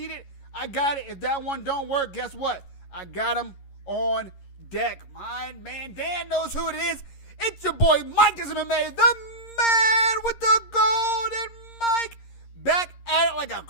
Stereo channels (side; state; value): right; late; 11 ms